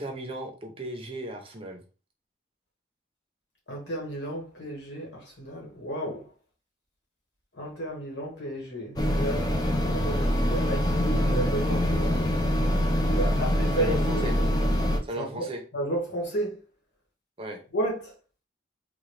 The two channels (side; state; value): both; normal; correlation 0.67